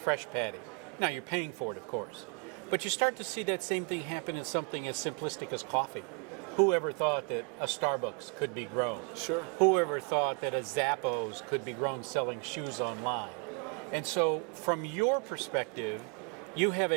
patty. Now you're paying for it, of course. But you start to see that same thing happen in something as simplistic as coffee. Whoever thought that a Starbucks could be grown? Sure. Whoever thought that a Zappos could be grown selling shoes online? And so from your perspective, you have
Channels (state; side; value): quieter; left; 36.7 dB